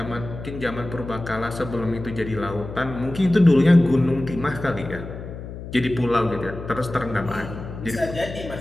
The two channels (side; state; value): left; noise; hum, 11 dB below the sound